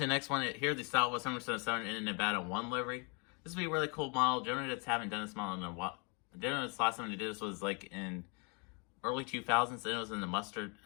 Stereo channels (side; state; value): right; quieter; 33.9 dB